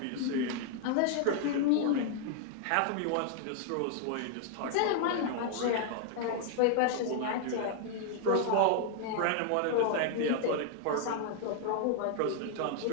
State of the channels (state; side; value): different; both; correlation 0.00